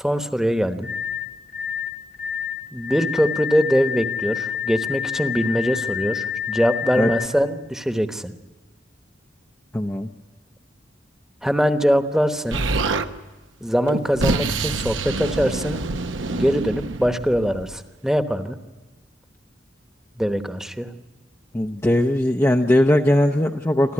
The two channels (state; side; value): normal; both; correlation 0.87